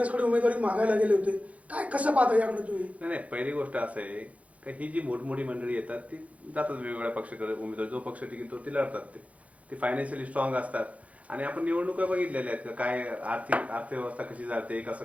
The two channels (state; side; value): late; left; 0.066 ms